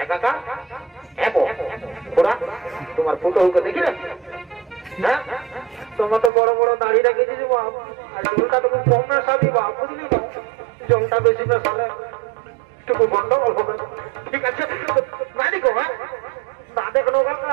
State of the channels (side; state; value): left; drops out; at 6.3 s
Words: একাকা এমো ওরা তোমার ফুটোকে দেখি না হ্যাঁ তোমার তো বড় বড় দাঁড়িয়ে রেখেছি বাপ আর জলটা তুমি কম না সাবি বাপ বুঝলি না জলটা বেশি না সালে একটু গন্ডগোল হবে ঠিক আছে না দেখো হ্যাঁ না দেখো